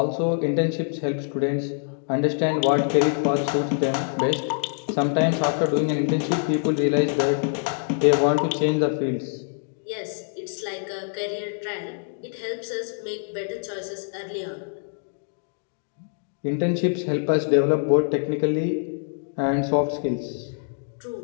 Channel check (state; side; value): silent; right; digital silence